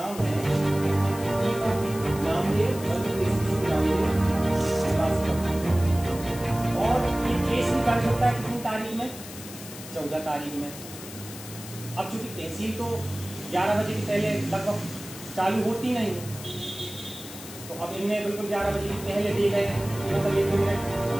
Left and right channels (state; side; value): noise; left; hiss, 14 dB below the sound